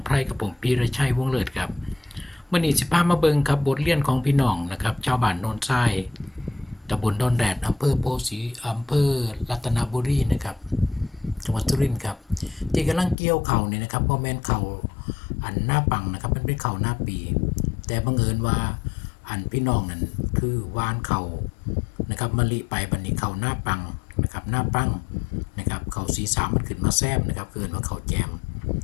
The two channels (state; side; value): drops out; right; at 13.2 s